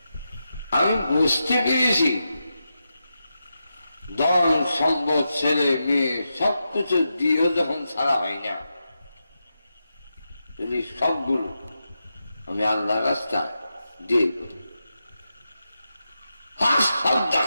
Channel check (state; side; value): inverted; both; correlation -0.88